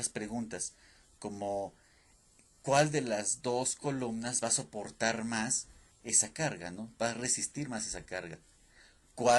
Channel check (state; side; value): identical; both; correlation 1.00